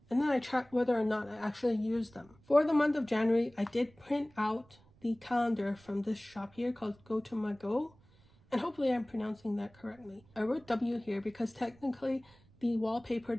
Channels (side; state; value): right; noise; rumble, 28 dB below the sound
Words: and then I track whether or not I actually use them. For the month of January, I did print out the calendar from this shop here called Go to My Go, and hopefully I'm pronouncing that correctly. I wrote W here because technically the wallpaper